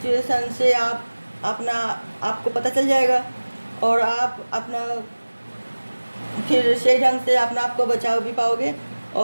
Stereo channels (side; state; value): both; inverted; correlation -1.00